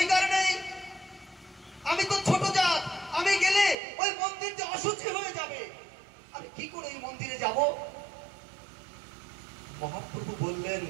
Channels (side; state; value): left; drops out; at 3.8 s